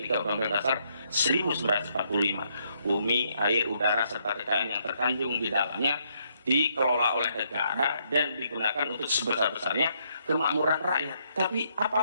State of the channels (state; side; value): inverted; both; correlation -0.73